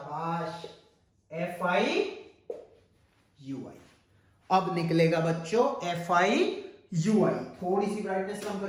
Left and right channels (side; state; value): both; identical; correlation 1.00